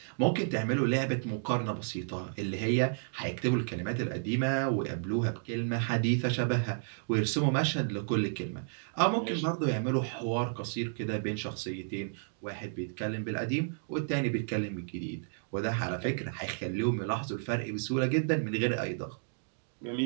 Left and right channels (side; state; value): left; silent; digital silence